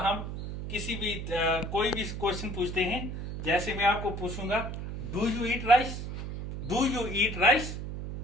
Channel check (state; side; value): noise; right; hum, 6 dB below the sound